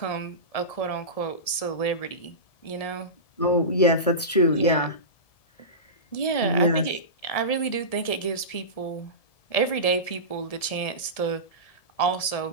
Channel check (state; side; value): late; right; 1.7 ms